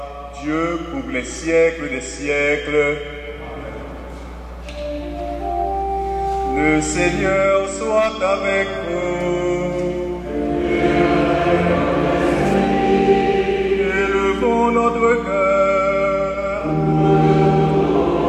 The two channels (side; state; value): both; identical; correlation 1.00